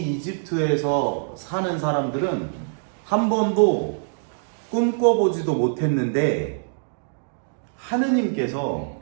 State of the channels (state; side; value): silent; left; digital silence